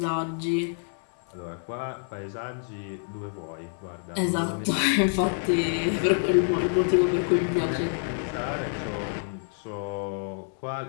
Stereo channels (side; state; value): right; silent; 60 dB below the other